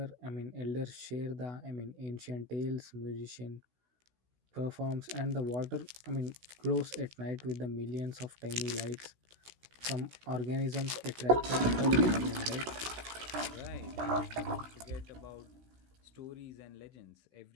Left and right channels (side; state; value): left; late; 16 ms